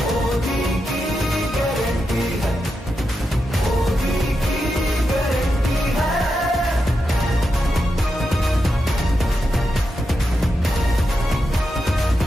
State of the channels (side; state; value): both; normal; correlation 0.87